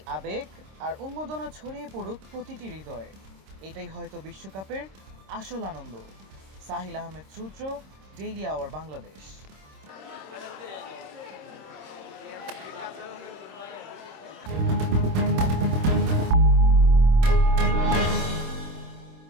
আবেগ আর উন্মাদনা ছড়িয়ে পড়ুক প্রতিটি হৃদয়ে। এটাই হয়তো বিশ্বকাপের আসল আনন্দ। সাহিল আহমেদ সূত্র, ডেইলি আওয়ার বাংলাদেশ।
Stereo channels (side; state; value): left; late; 26 ms